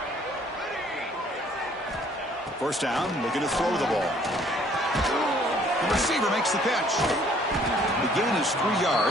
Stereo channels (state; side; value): normal; both; correlation 0.60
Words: First down, looking to throw the ball. The receiver makes the catch. The gain is 3